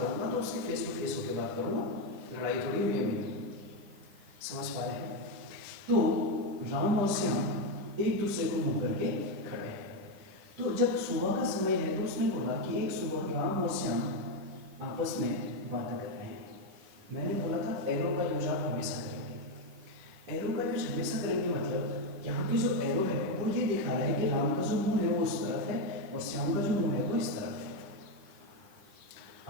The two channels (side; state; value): left; late; 10 ms